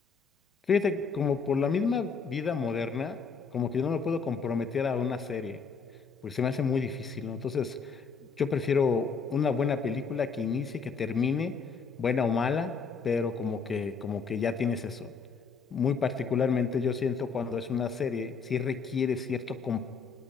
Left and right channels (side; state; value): right; quieter; 5.3 dB